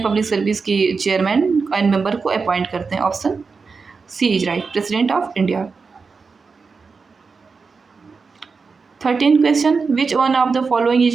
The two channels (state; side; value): quieter; left; 4.8 dB